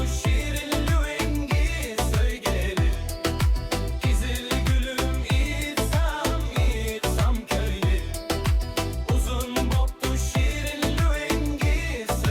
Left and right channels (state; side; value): identical; both; correlation 1.00